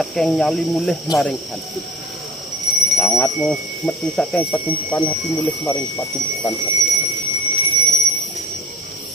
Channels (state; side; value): normal; both; correlation 0.44